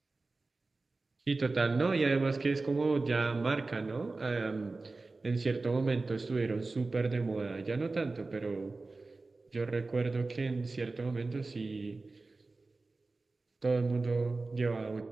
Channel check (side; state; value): left; quieter; 3.5 dB